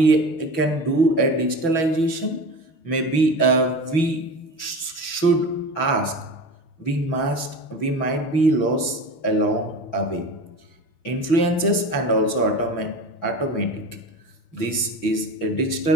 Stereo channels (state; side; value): late; right; 6.0 ms